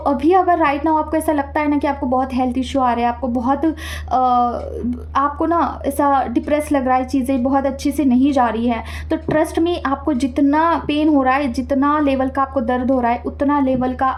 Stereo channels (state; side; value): identical; both; correlation 1.00